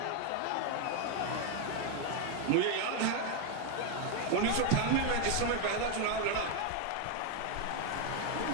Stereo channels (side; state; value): both; different; correlation 0.01